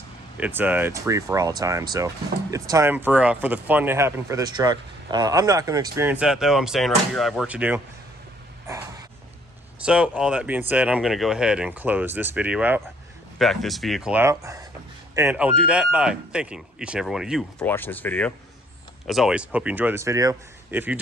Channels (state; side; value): normal; both; correlation 0.63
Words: it's free for all time. So it's time for the fun to happen for this truck. I'm not going to experience that though. I'm staying right here. I have work to do. So all that being said, I'm going to go ahead and close this video out, back this vehicle out, and I'll do that by thanking each and every one of you for watching this video. As always, hope you enjoyed this video. If you